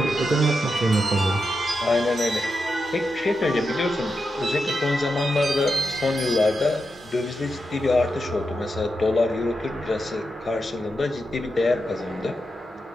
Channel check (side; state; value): both; normal; correlation 0.87